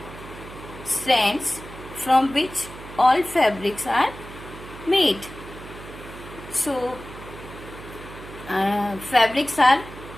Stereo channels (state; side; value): noise; right; hum, 15 dB below the sound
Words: strands from which all fabrics are made. So fabrics are